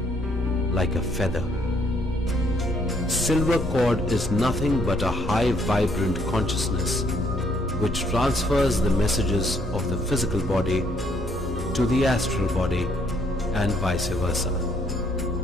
like a feather. Silver cord is nothing but a high vibrant consciousness which transfers the messages of the physical body to the astral body and vice versa.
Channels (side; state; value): both; normal; correlation 0.68